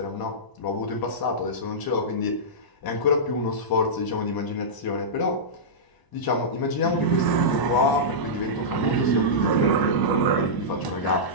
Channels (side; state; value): right; late; 1.0 ms